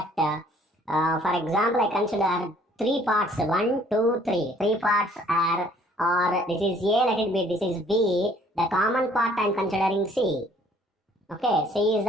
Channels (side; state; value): both; normal; correlation 0.59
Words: For example, I consider 3 parts, 1, 2, 3. 3 parts are, or this is A, let it be, this is B. The common part I am considering C. Okay, C is